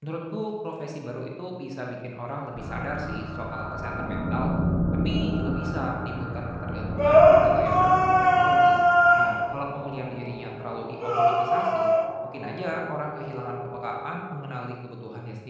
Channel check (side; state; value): both; identical; correlation 1.00